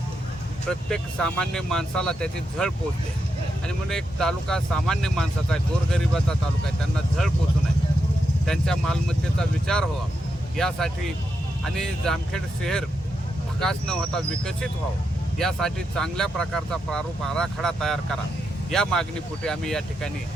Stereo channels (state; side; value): normal; both; correlation 0.84